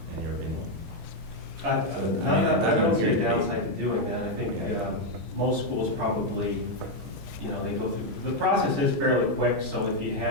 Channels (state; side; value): late; left; 13 ms